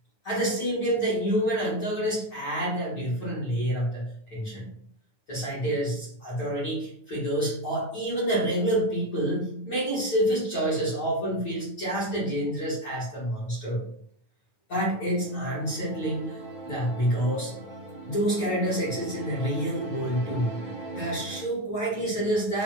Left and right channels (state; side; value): late; right; 9.2 ms